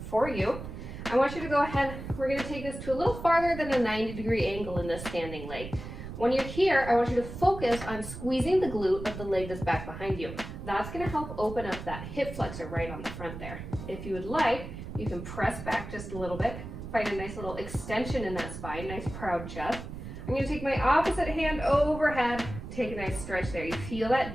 you. I want you to go ahead, we're going to take this to a little farther than a 90-degree angle in this standing leg. When you're here, I want you to focus on squeezing the glute of the leg that's back behind you. That's going to help open up that hip flexor right on the front there. If you would like, you can press back just a little bit, find a nice little extension in that spine, nice proud chest. I'm going to take my opposite hand overhead, take a nice stretch there. You feel that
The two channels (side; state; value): right; noise; rumble, 10 dB below the sound